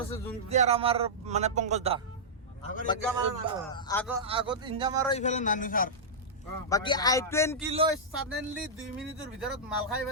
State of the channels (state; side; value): normal; both; correlation -0.12